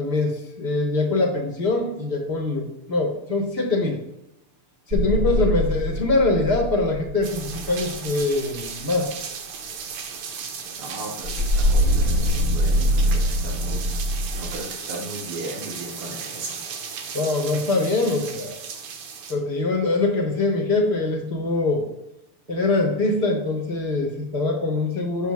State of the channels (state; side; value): late; left; 6.8 ms